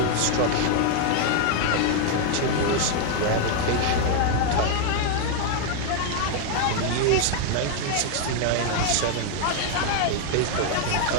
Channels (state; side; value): different; both; correlation 0.00